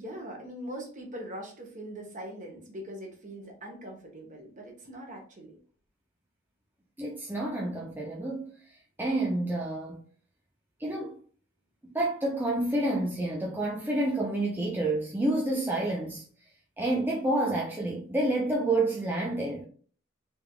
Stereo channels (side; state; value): both; normal; correlation 0.60